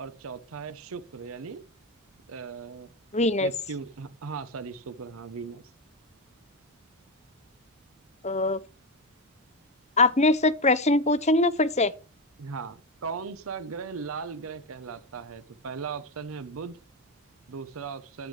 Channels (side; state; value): both; normal; correlation 0.12